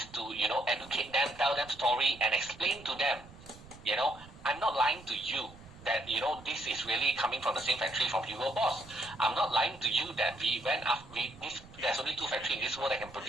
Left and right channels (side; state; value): right; noise; rumble, 20 dB below the sound